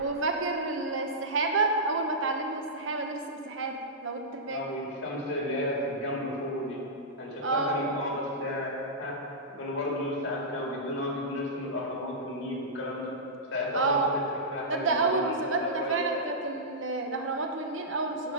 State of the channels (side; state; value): both; normal; correlation -0.13